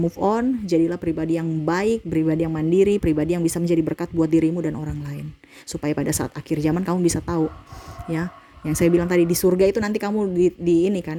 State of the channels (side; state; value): both; identical; correlation 1.00